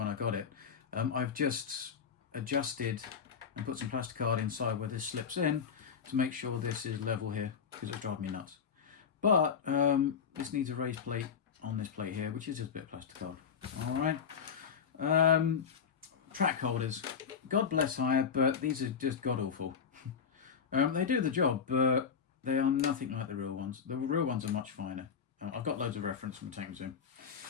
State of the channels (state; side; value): quieter; right; 6.8 dB